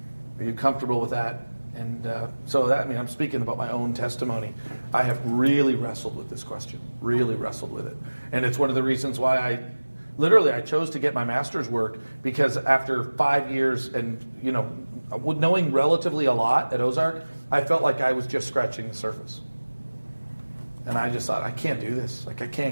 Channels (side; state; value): both; inverted; correlation -1.00